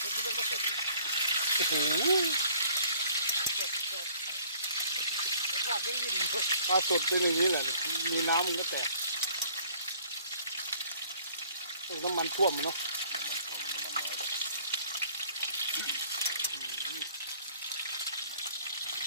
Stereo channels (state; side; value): inverted; both; correlation -0.57